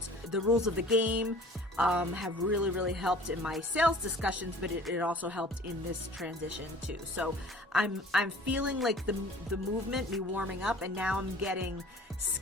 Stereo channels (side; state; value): both; normal; correlation 0.47